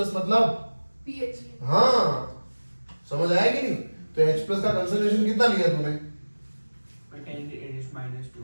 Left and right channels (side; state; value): both; inverted; correlation -1.00